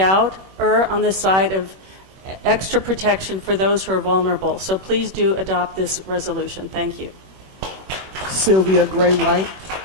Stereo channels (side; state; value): left; late; 21 ms